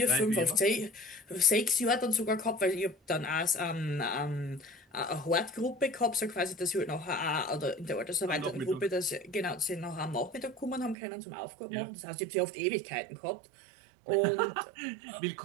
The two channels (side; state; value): left; drops out; at 11.0 s